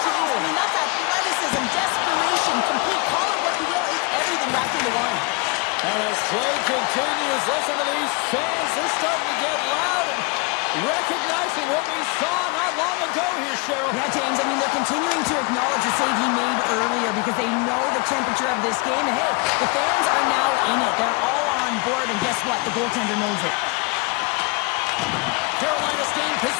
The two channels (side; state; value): right; quieter; 28.5 dB